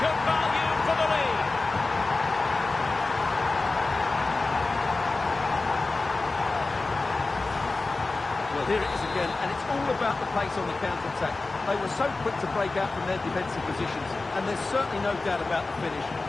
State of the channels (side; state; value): right; quieter; 3.5 dB